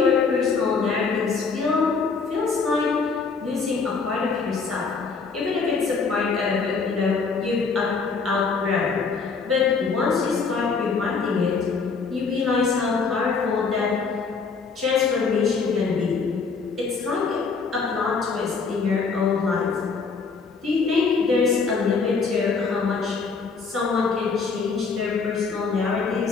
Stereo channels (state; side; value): quieter; right; 4.9 dB